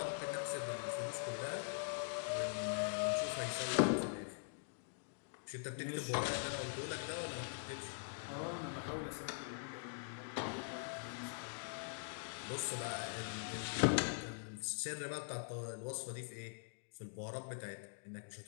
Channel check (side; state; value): right; silent; digital silence